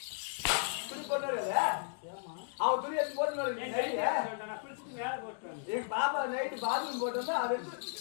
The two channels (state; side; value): silent; right; digital silence